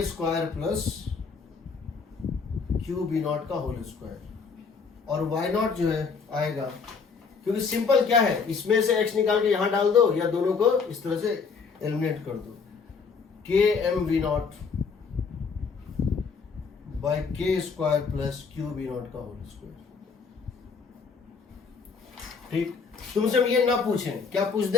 square plus q B naught का होल स्क्वायर। और वाई नॉट जो है आएगा, क्योंकि सिंपल क्या है, इसमें से एक्स निकाल के यहां डाल दो या दोनों को इस तरह से एलिमिनेट कर दो। K m v naught by k square plus q B naught का होल स्क्वायर। ठीक, तुमसे हम ये ना पूछें, क्या पूछ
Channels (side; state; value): right; quieter; 5.3 dB